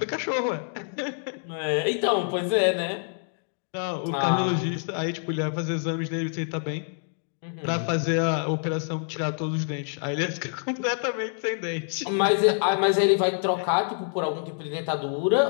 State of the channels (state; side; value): silent; right; 60 dB below the other